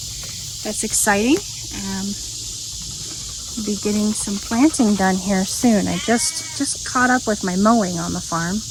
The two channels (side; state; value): both; identical; correlation 1.00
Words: that's exciting. Be getting some planting done here soon. I just caught up with my mowing on the farm